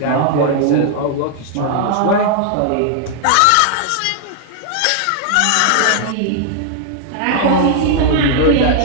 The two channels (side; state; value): both; different; correlation -0.01